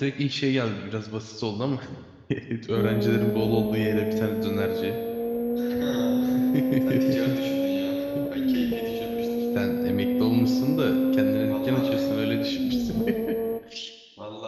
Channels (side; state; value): both; identical; correlation 1.00